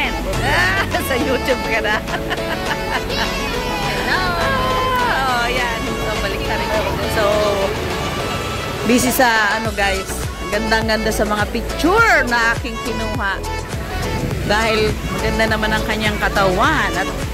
Sa YouTube ka na. Hello! Ayan, so balik na rin ako. So, busy sa guys, gandang-ganda sa mga picture na aking kinuha. Dahil ganda naman ang kanyang katawan at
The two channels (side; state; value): both; identical; correlation 1.00